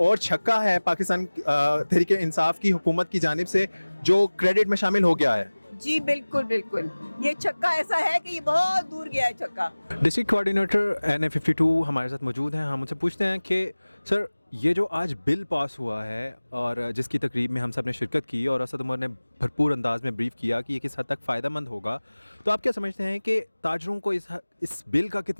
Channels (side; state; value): both; inverted; correlation -1.00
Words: और छक्का है पाकिस्तान तहरीक इंसाफ की हुकूमत की जानिब से जो क्रेडिट में शामिल हो गया है? जी बिल्कुल बिल्कुल, ये छक्का ऐसा है कि ये बहुत दूर गया है छक्का। डिस्ट्रिक्ट कोऑर्डिनेटर NA52 हमारे साथ मौजूद हैं। हम उनसे पूछते हैं कि सर, ये जो आज बिल पास हुआ है और जिसकी तकरीब में हम सब ने शिरकत की और असद उमर ने भरपूर अंदाज में ब्रीफ किया कि ये किस हद तक फ़ायदेमंद होगा, तो आप क्या समझते हैं कि ताजरों को इस बिल का